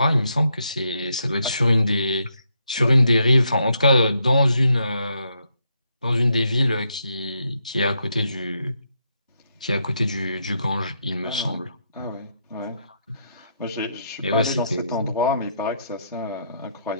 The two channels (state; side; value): inverted; both; correlation -0.78